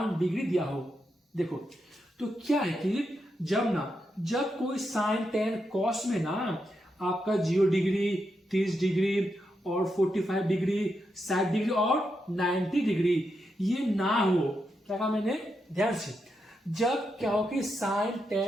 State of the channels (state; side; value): normal; both; correlation 0.84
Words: डिग्री दिया हो, देखो तो क्या है कि जब कोई साइन टेन कॉस में ना आपका 0 डिग्री 30 डिग्री और 45 डिग्री 60 डिग्री और 90 डिग्री ये ना हो, क्या कहा मैंने, ध्यान से, जब क्या हो कि साइन